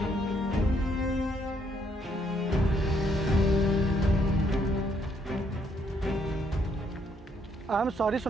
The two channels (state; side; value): normal; both; correlation 0.71